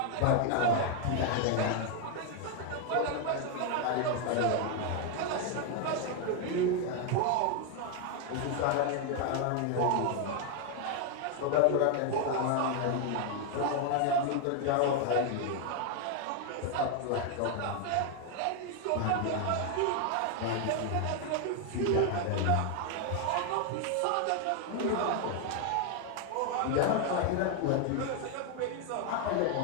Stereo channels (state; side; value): different; both; correlation 0.01